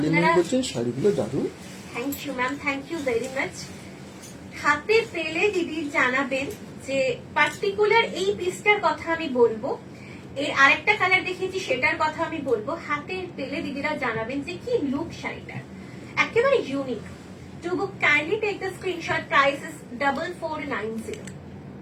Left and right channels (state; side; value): identical; both; correlation 1.00